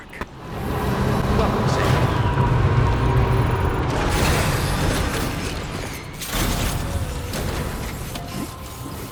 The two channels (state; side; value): identical; both; correlation 1.00